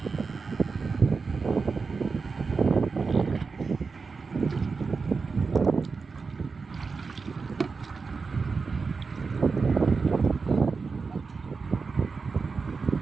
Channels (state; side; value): quieter; left; 4.7 dB